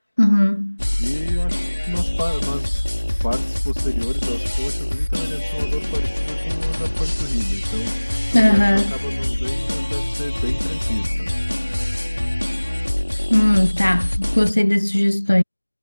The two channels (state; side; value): inverted; both; correlation -1.00